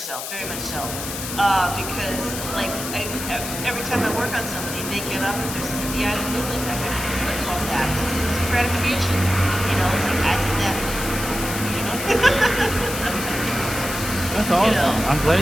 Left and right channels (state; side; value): noise; left; hiss, 7 dB below the sound